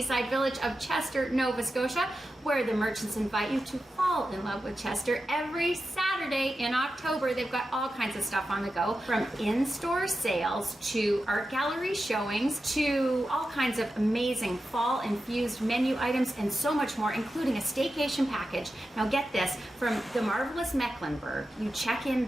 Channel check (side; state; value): both; normal; correlation 0.91